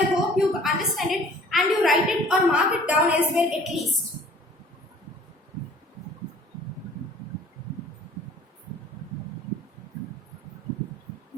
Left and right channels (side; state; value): both; normal; correlation 0.51